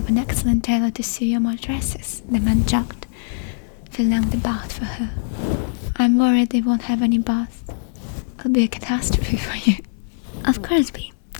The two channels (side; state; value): right; silent; digital silence